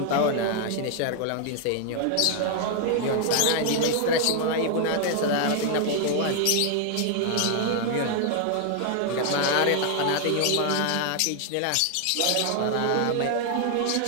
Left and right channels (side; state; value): both; different; correlation 0.00